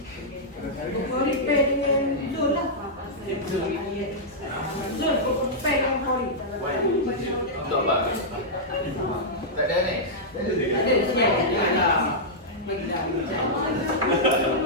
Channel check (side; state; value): both; normal; correlation -0.09